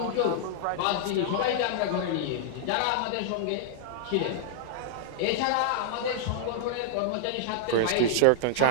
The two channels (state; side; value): different; both; correlation -0.01